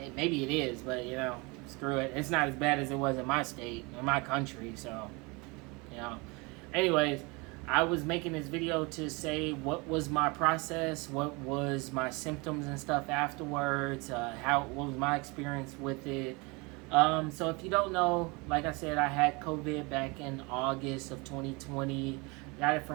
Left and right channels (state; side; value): quieter; left; 27.4 dB